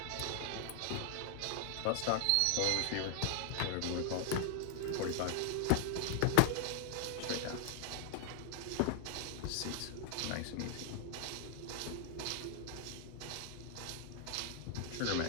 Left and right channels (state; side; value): different; both; correlation 0.00